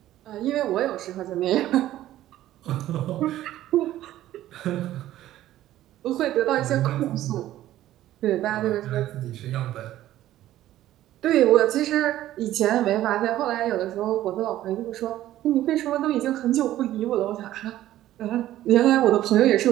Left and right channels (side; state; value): left; quieter; 13.8 dB